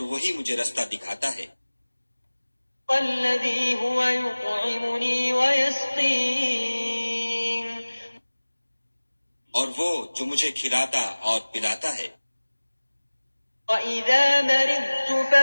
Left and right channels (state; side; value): inverted; both; correlation -1.00